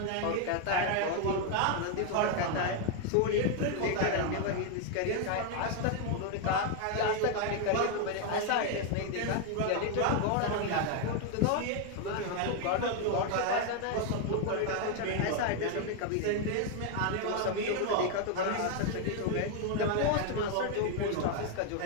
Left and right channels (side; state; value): both; different; correlation 0.01